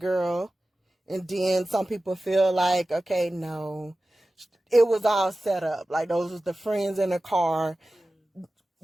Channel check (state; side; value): normal; both; correlation 0.95